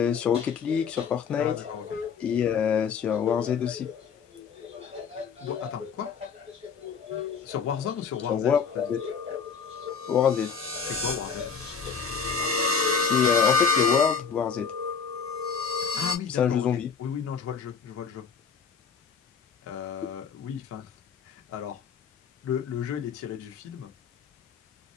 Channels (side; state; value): right; quieter; 6.3 dB